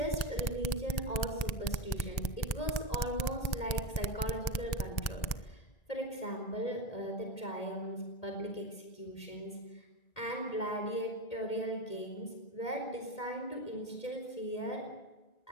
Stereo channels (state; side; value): late; right; 1.9 ms